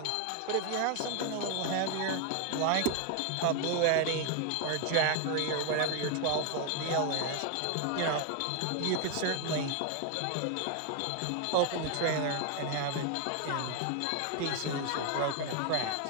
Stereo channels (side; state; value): both; different; correlation 0.01